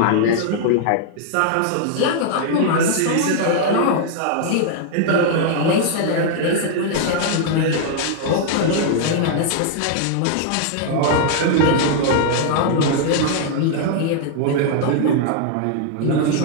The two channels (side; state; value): both; different; correlation -0.01